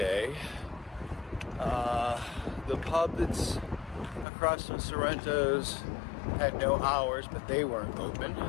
The pub that's across from Sorrento's had no hours, but they weren't open.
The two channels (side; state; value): right; drops out; at 4.2 s